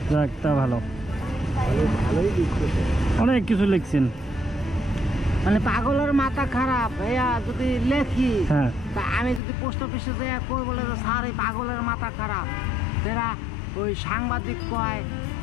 যাক তা ভালো ভালোই দিচ্ছে অনেক কিছু লিখছেন মানে পাগলের মাথা খারাপ ভাইয়া যদি লেখি হ্যাঁ তা আমি যদি পোস্ট অফিসে যাই কই বলে যে স্যার এই পাগলের মাথা খারাপ এরা ওই সাংবাদিক কয়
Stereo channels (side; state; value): right; drops out; at 9.4 s